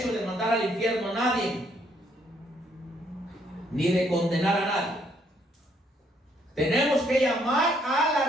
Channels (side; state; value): both; normal; correlation 0.69